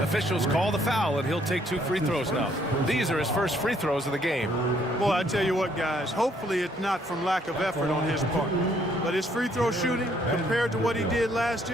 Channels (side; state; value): both; normal; correlation 0.67